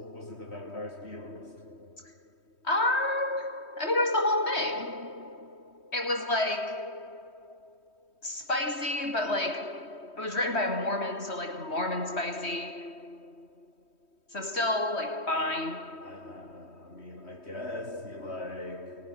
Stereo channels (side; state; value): right; late; 3.2 ms